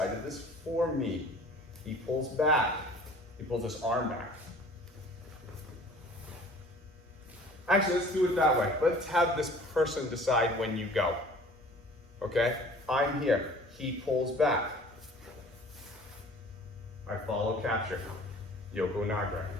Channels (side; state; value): both; normal; correlation 0.48